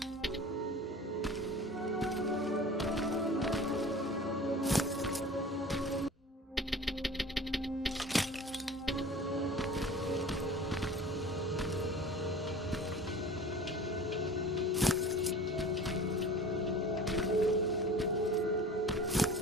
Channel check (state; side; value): normal; both; correlation 0.40